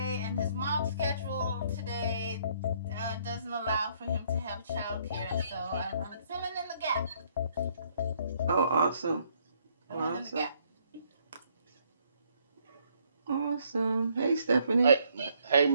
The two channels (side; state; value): both; inverted; correlation -0.67